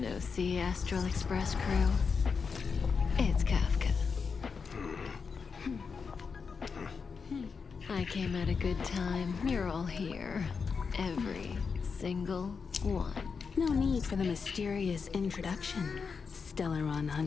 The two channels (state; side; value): quieter; right; 5.5 dB